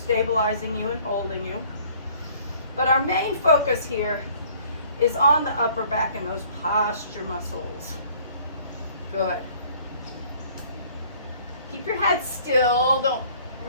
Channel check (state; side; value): inverted; both; correlation -0.56